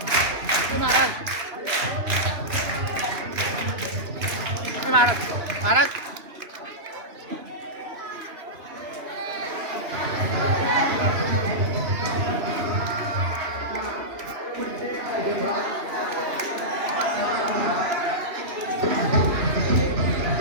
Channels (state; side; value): late; left; 2.9 ms